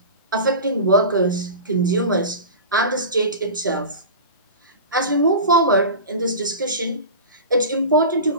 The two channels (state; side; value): inverted; both; correlation -0.30